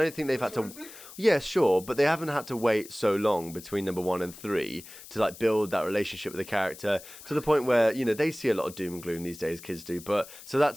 think they've had horrific? to. Yeah, sure, but they haven't had to wait so long between number 1 and 3 to like build that relationship with the character to the point where they see a lot of doom and gloom these days. Kids do, but so that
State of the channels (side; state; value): left; noise; hiss, 17 dB below the sound